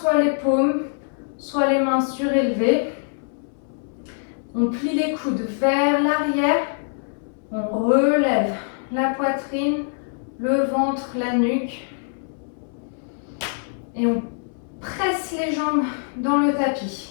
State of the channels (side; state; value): right; silent; 63 dB below the other